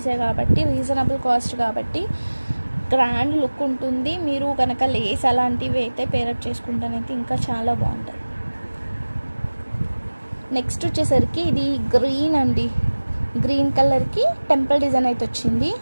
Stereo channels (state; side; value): inverted; both; correlation -1.00